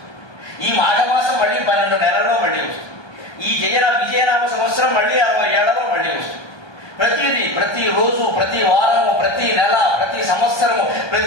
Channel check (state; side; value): late; right; 1.2 ms